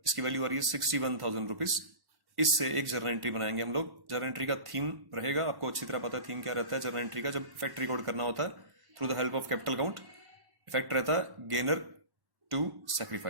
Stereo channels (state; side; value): late; left; 1.1 ms